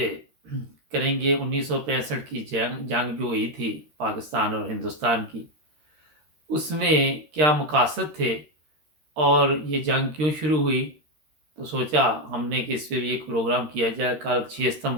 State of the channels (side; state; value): left; late; 13 ms